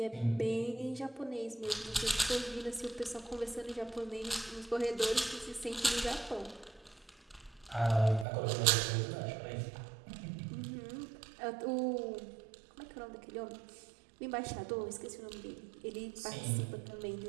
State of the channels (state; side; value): drops out; left; at 8.2 s